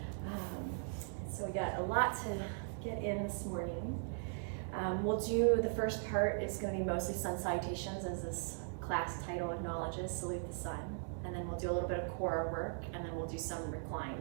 So we got a lot to get in this morning. We'll do, the first part is going to be mostly sun salutations, as this class title acknowledges, salute the sun. And then we'll do a little bit of core work, and then we'll do some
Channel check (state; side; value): silent; left; digital silence